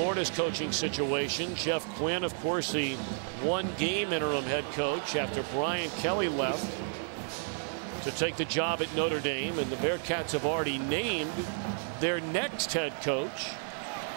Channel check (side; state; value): left; silent; digital silence